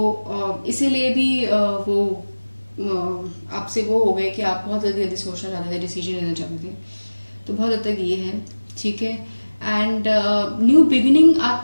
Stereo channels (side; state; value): both; inverted; correlation -1.00